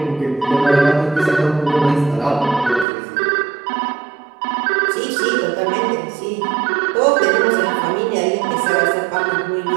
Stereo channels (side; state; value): left; drops out; at 2.9 s